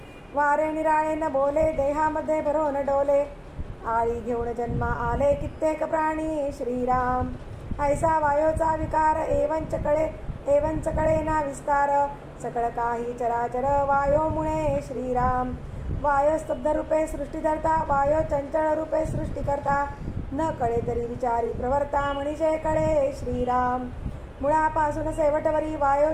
वारे निराळे न बोले देहामध्ये भरोन डोले आळी घेऊन जन्मा आले कित्येक प्राणी श्रीराम ऐसा वायोचा विकार एवंच कळे ना विस्तार सकळ काही चराचर वायो मुळे श्रीराम वायो स्तब्ध रूपे सृष्टी धरता वायो चंचल रूपे सृष्टी करता न कळे तरी विचारी प्रवर्ता मनीषे कळे श्रीराम मुळापासून शेवटवरी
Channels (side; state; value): both; identical; correlation 1.00